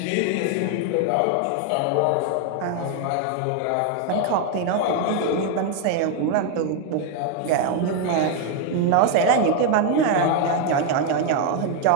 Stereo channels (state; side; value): different; both; correlation 0.01